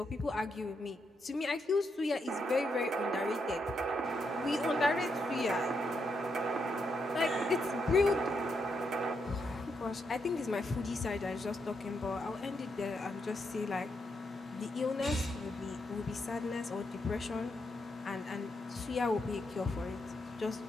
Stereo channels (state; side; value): normal; both; correlation 0.80